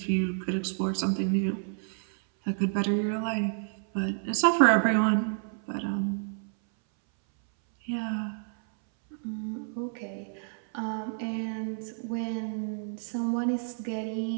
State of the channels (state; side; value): silent; left; 58 dB below the other